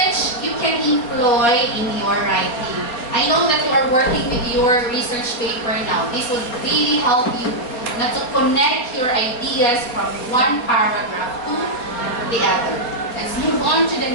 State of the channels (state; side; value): late; right; 4.2 ms